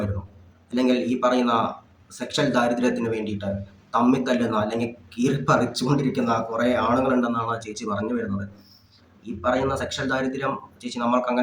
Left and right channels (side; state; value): both; identical; correlation 1.00